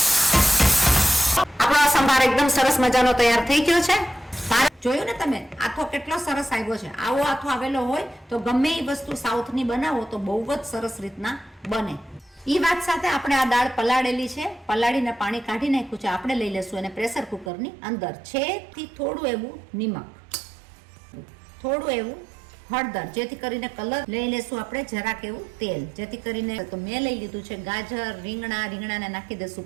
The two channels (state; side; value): drops out; left; at 17.5 s